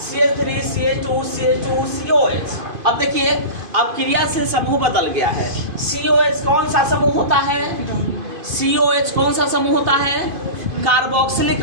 CH3 CH2 CH2 COH। अब देखिए अब क्रियाशील समूह बदल गया है। COH कौन सा समूह होता है, COH कौन सा समूह होता है,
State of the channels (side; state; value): left; late; 2.5 ms